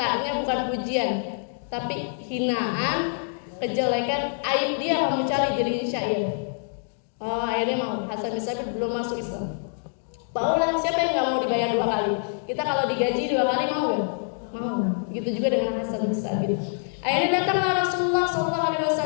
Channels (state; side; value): silent; right; digital silence